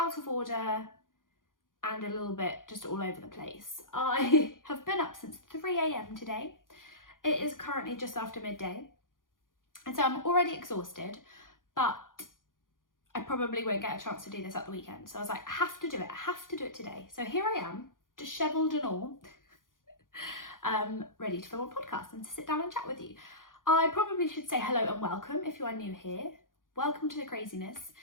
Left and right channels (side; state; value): right; late; 0.90 ms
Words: of order, and a little bit just all over the place. I have been up since 3 a.m. today. It is currently just after midday, and so I'm already exhausted, but I probably won't get a chance to do this at the weekend. So I was like, I have to do it today. So here I am, dishevelled and all, ready to film a podcast and to sit down and chat with you. I probably should say hello and welcome if you are new here. Welcome to the craziness.